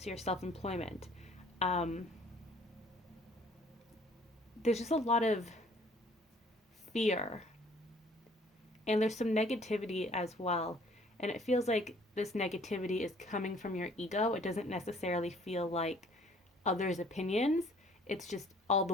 your self-employment. There's just a lot of fear, and there's some negativity as well, and it feels like this negativity is coming from your ego. It doesn't necessarily feel like others' opinions. It's just all the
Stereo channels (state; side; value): normal; both; correlation 0.57